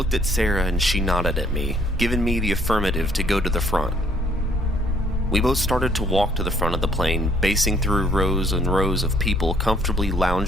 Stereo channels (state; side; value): normal; both; correlation 0.63